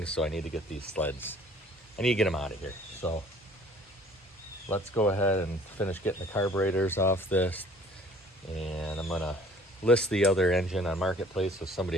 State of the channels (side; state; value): both; normal; correlation 0.53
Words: so I need to get these sleds. I need to get them out of here. So let's go ahead and finish getting the carburetors off this. And I'm gonna list the other engine on Marketplace so